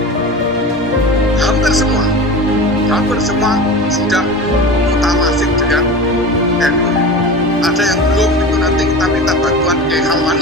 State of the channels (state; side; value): normal; both; correlation 0.31